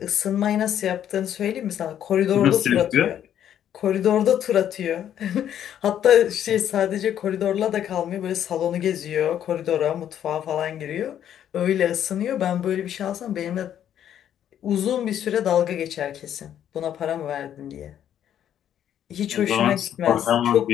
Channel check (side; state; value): right; quieter; 10.2 dB